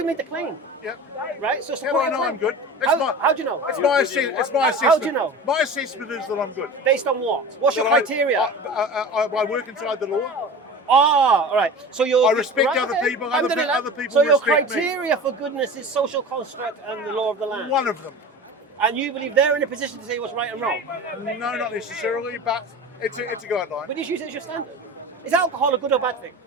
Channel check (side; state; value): both; normal; correlation 0.34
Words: made the claim, Yep. right? So How do support I your know claim. I'm good? How do you know? It's my assessment. How do you know? My assessment is that I'm good. Based on what? What's your That I- criteria? I work inside the law. Ah, all right. So you're. I respect right, other okay. people, Alhamdulillah. other people So your respect me. criteria for goodness is social construct and the law of the land. One of them. And you believe they're in a position to say what's right and wrong. No, not necessarily, but it's a guideline. But use it as your standard. Is alcohol a good or bad thing?